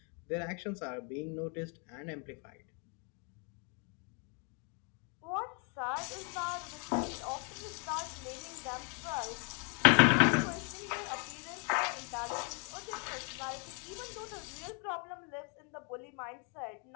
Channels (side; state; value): right; quieter; 37.6 dB